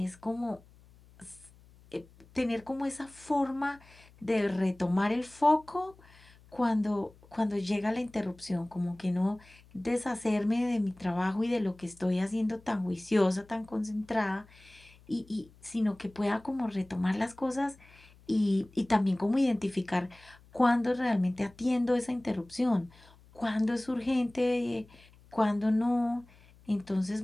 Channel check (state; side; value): noise; left; hum, 26 dB below the sound